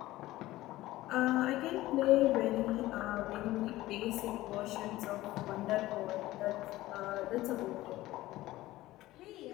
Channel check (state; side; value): quieter; right; 16.8 dB